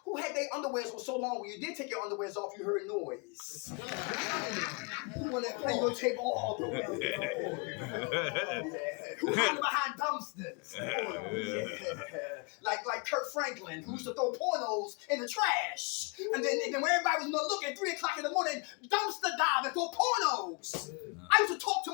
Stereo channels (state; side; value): quieter; right; 31.9 dB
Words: Who had their underwears for so long when you did take your underwears off, you heard noise? Who want to play your tape all the way? Yeah. Who hiding behind dumpsters? Yeah. Like Kurt Franklin, who used to throw pornos in the trash. And then when everybody was looking, 3 o'clock in the morning, dumpster diving for pornos. I used to talk to